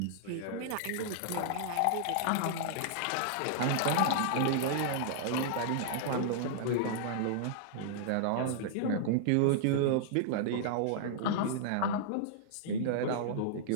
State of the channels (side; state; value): both; different; correlation -0.01